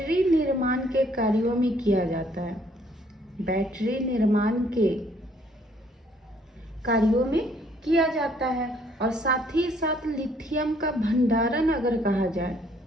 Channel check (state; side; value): normal; both; correlation 0.64